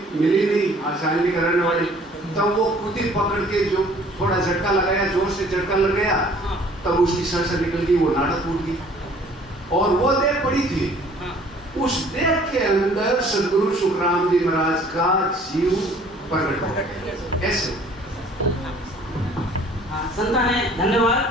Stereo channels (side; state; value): both; normal; correlation 0.54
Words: मिली नहीं आसानी करने वाली, तब वो खुद ही पकड़ के जो थोड़ा झटका लगाया, जोर से झटका लग गया, तब उसकी सर निकल गई, वो नाटक टूट गई और वो देह पड़ी थी। उस देह के अंदर सदगुरु सुखराम जी महाराज का जीव प्रकट हो गया। ऐसे संता ने धन्यवाद